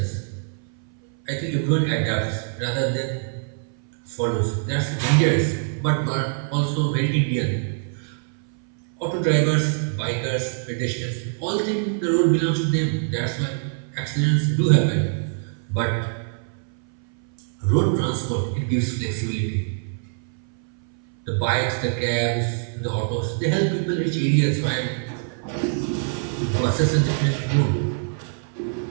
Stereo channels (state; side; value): silent; left; 60 dB below the other